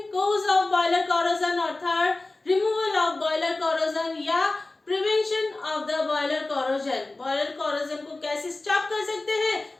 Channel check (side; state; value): right; quieter; 3.1 dB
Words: cause of boiler corrosion और third removal of boiler corrosion या prevention of the boiler corrosion. Boiler corrosion को कैसे stop कर सकते